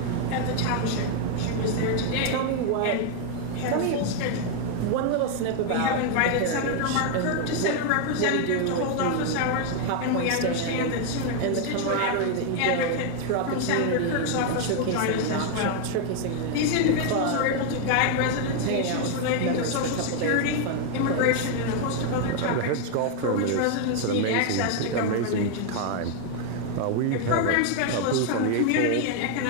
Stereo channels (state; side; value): different; both; correlation 0.01